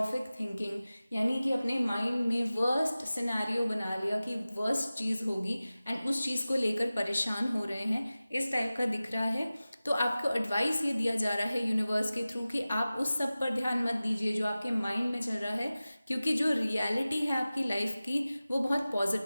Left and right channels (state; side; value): inverted; both; correlation -0.97